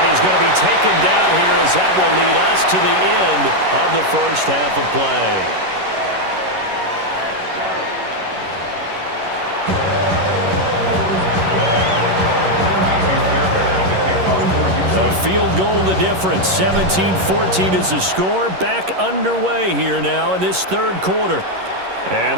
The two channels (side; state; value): left; late; 11 ms